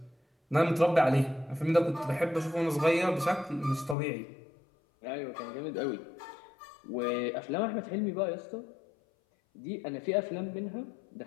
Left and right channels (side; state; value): right; drops out; at 4.0 s